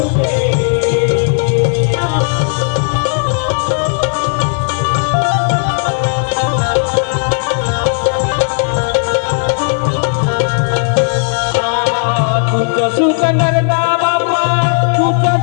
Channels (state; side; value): silent; right; digital silence